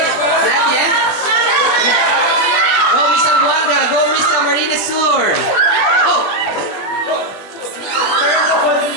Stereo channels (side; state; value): right; late; 20 ms